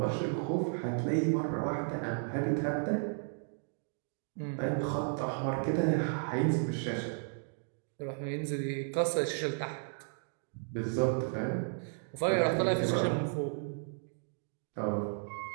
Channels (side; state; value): left; silent; digital silence